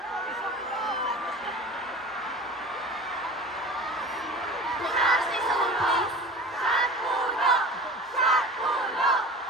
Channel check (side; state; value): both; normal; correlation 0.37